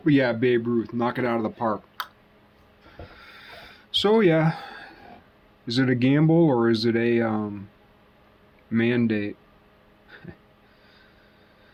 but yeah, Babe Ruth, knock it out of the park. So yeah, is it a gamble or is it a mandate?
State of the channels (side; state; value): both; identical; correlation 1.00